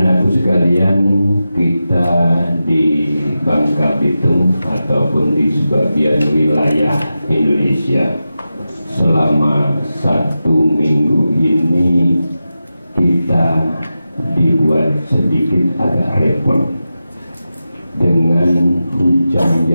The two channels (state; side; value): inverted; both; correlation -0.92